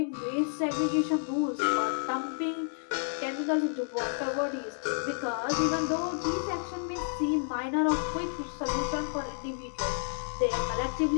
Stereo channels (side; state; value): right; silent; digital silence